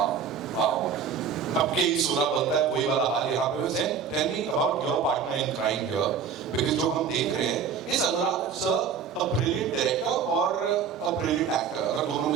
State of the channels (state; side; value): quieter; left; 6.7 dB